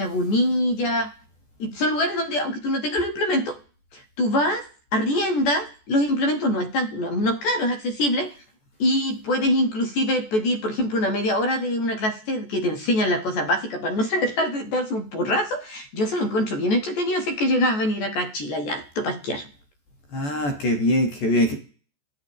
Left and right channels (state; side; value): late; right; 14 ms